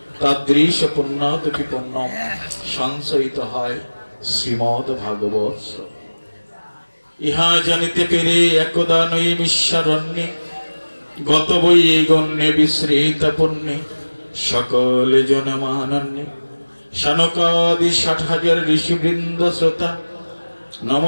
তাদৃশ পুণ্যাদপি পুণ্যম সঞ্চয়িত হয় শ্রীমদ ভাগবত। ইহা জানিতে পেরে একদা নৈমিষারণ্যে গত বই গণ্যে বিশ্রিত পুণ্যে সকল জনমানন্যে শানকাদি ৬০,০০০ ঋষিবৃন্দ শ্রোতা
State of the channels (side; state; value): both; inverted; correlation -1.00